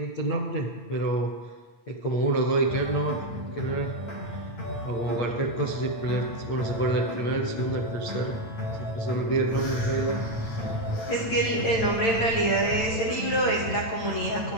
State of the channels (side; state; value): right; late; 8.9 ms